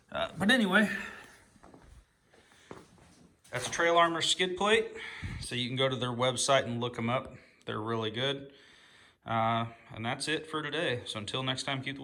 But anyway, that's Trail Armor skid plate. So you can go to their website and look them up. They're really good. And that's it for today. So until next time, keep the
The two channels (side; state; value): both; identical; correlation 1.00